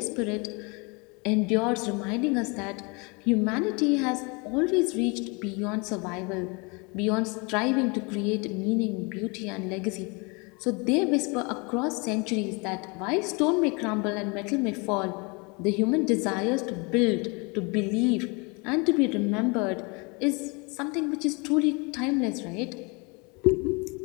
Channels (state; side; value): quieter; right; 30.0 dB